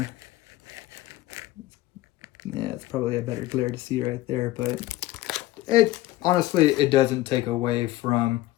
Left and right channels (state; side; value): quieter; right; 16.3 dB